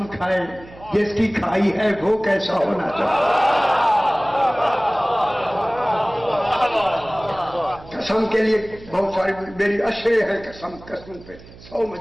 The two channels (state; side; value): noise; right; hum, 20 dB below the sound